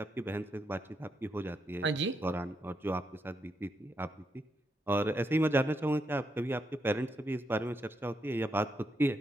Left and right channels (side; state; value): both; normal; correlation 0.81